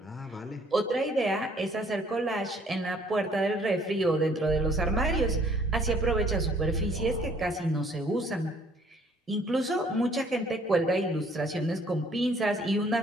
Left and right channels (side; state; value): both; normal; correlation 0.60